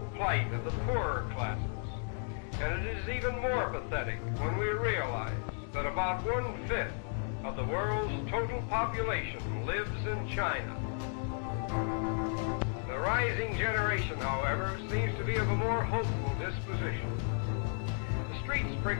plight of the poorer classes. And it is even more pathetic when we realize that about 1/5 of the world's total population lives in China. The rising generation, however, seems to be of a more hopeful disposition. The street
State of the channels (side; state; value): right; silent; 55 dB below the other